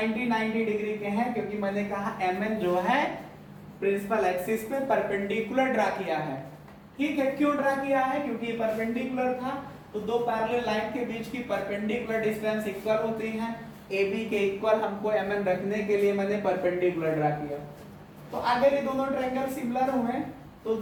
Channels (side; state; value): both; identical; correlation 1.00